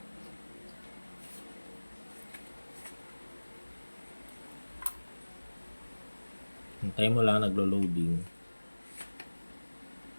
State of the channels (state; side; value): inverted; both; correlation -1.00